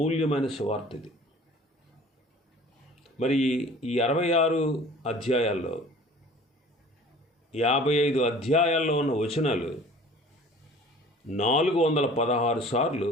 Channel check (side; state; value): both; normal; correlation 0.47